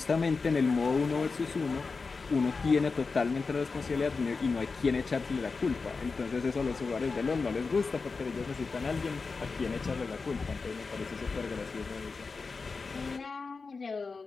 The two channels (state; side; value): quieter; right; 4.4 dB